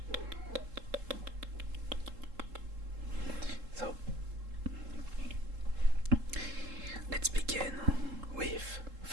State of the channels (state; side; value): late; left; 3.7 ms